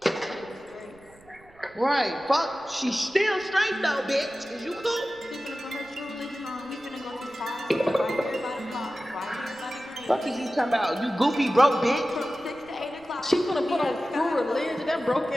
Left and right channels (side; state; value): right; noise; rumble, 27 dB below the sound